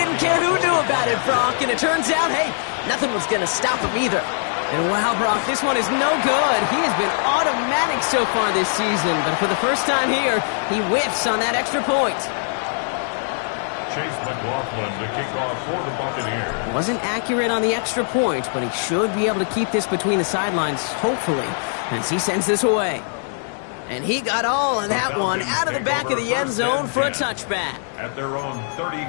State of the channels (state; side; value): silent; right; digital silence